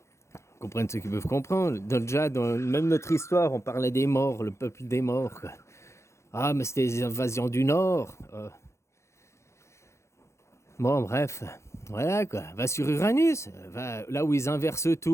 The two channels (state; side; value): late; right; 0.14 ms